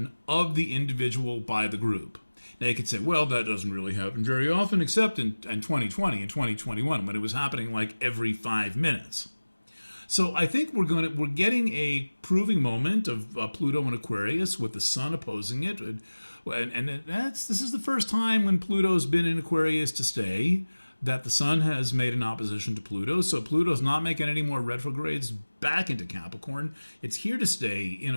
of the individual by the group. Now you could say, well, that doesn't really happen very often, except in 2020 and 2021, when it was happening like every 5 minutes. So I think we're getting a proving moment of Pluto and Aquarius with the Sun opposing it, and this is the first time when Pluto's been in Aquarius to stay that the Sun has made an opposition to Pluto. So Pluto's not making any more retrogrades back into Capricorn. It's here to stay in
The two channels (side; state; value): both; inverted; correlation -1.00